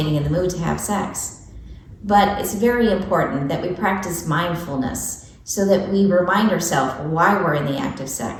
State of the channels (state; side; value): identical; both; correlation 1.00